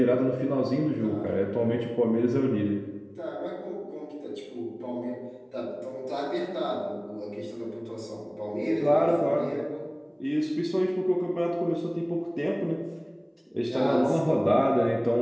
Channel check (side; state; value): both; identical; correlation 1.00